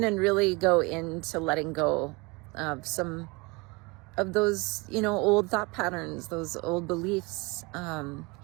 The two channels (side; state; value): left; quieter; 26.7 dB